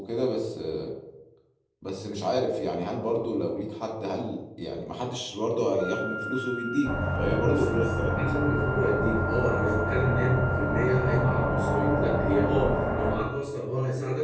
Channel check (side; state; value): both; identical; correlation 1.00